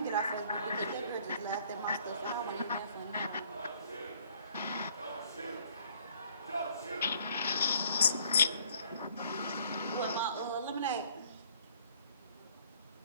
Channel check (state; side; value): inverted; both; correlation -0.60